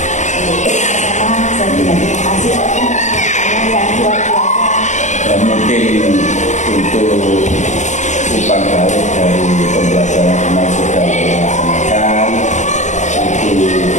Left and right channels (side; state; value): right; late; 0.35 ms